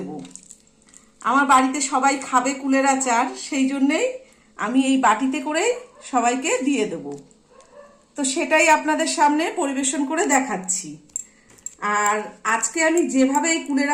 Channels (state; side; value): identical; both; correlation 1.00